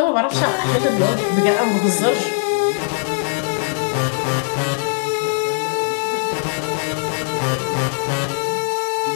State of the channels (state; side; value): silent; right; digital silence